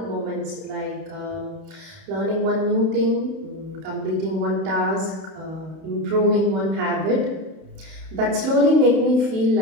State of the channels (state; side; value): late; left; 31 ms